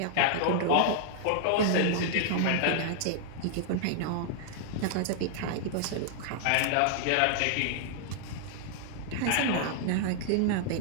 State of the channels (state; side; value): different; both; correlation 0.00